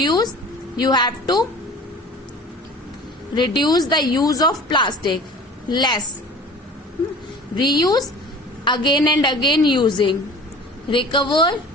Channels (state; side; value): normal; both; correlation 0.43